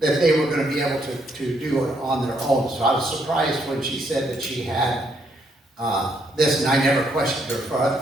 they were gonna be able to do it on their own. So I was surprised when she said that she had this, and I never questioned her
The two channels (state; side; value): normal; both; correlation 0.73